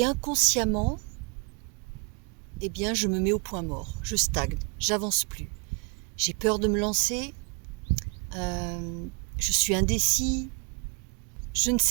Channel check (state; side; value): quieter; left; 34.4 dB